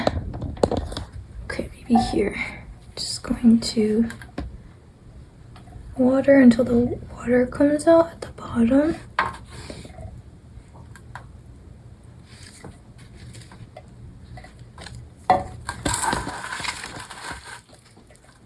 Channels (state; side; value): identical; both; correlation 1.00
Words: Okay, maybe here. Just going to water until the water comes out at the bottom.